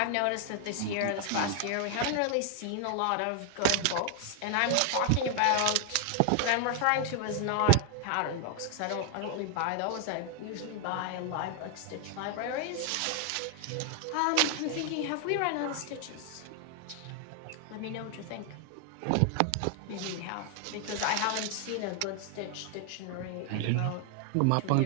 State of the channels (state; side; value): different; both; correlation 0.00